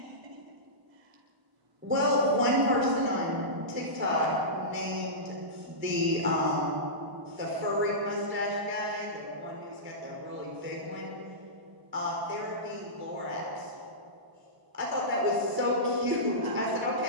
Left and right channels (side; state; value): left; late; 1.0 ms